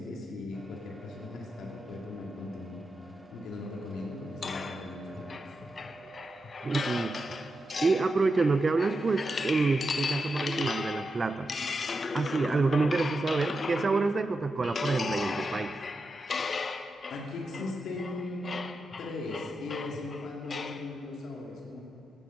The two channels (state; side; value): normal; both; correlation 0.87